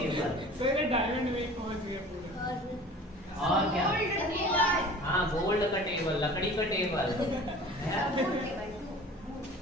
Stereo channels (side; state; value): both; normal; correlation 0.43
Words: सर डायमंड में पहुंच गया पूरा। और क्या? हाँ गोल्ड का टेबल, लकड़ी का टेबल।